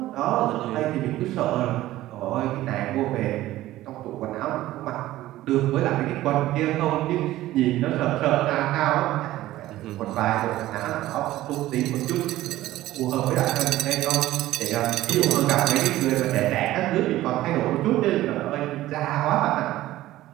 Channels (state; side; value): quieter; left; 15.5 dB